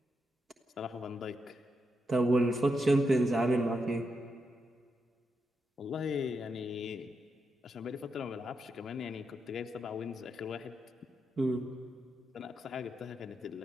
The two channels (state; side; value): normal; both; correlation 0.84